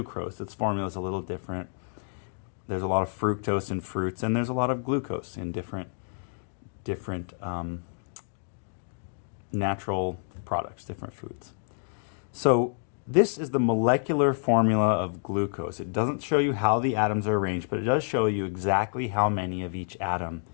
Its formula is a little different. There's a lot of fructose in fruits, and there's a lot of glucose in different natural products, different foods. So this is the molecular formula of glucose. It doesn't show you how the atoms are arranged, but it does show you exactly how many of each atom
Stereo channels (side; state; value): right; silent; digital silence